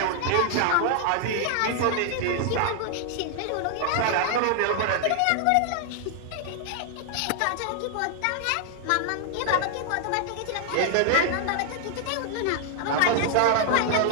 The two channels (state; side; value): different; both; correlation 0.00